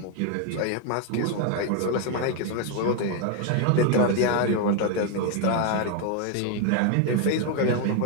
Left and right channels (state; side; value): different; both; correlation 0.01